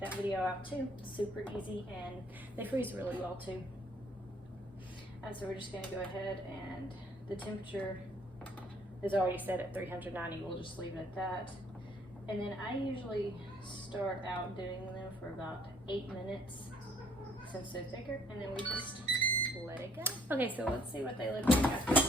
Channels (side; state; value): both; normal; correlation 0.62